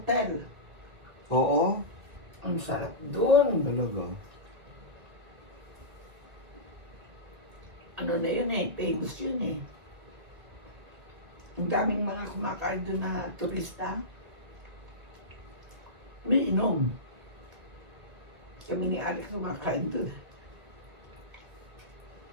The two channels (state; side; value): late; left; 2.0 ms